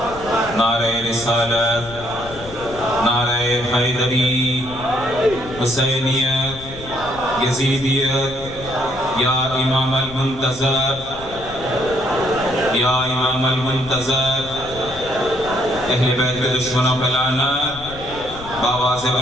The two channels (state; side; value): noise; left; rumble, 15 dB below the sound